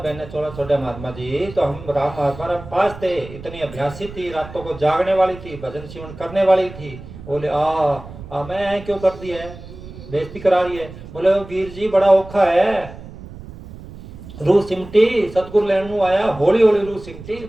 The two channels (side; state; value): right; noise; rumble, 15 dB below the sound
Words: ने छोड़ा महात्मा जी, तो हम राम महात्मा हम पास थे, इतनी अभ्यासी थी, रातों को जागने वाली थी, भजन शिवन करने वाली थी। बोले मैं क्यों कर दी है, बेइज्जती करा रही है। बोले वीर जी बड़ा औखा है, रूह सिमटी, सतगुरु लेने आया, हौली हौली रूह सिमटी,